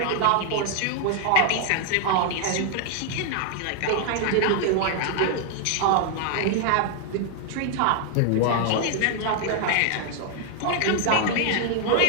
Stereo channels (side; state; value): both; different; correlation 0.00